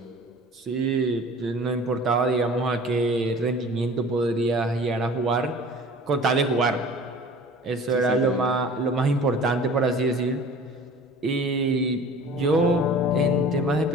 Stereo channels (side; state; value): both; normal; correlation 0.44